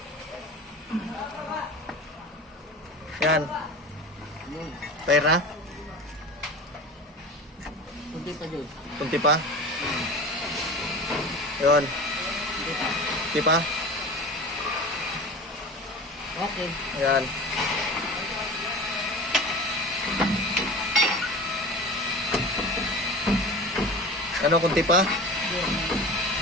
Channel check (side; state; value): both; normal; correlation 0.34